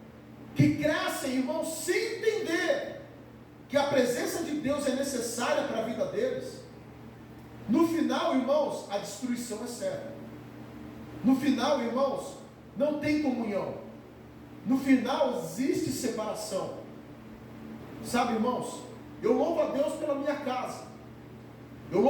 que crescem, irmãos, sem entender que a presença de Deus é necessária para a vida deles. No final, irmãos, a destruição é certa. No final, irmãos, não tem comunhão. No final existe separação. Sabe, irmãos, eu louvo a Deus pela minha casa, eu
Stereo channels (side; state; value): both; identical; correlation 1.00